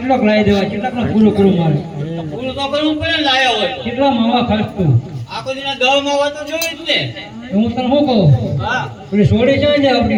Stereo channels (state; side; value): identical; both; correlation 1.00